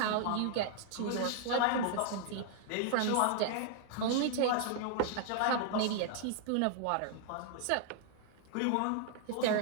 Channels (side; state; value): both; different; correlation -0.01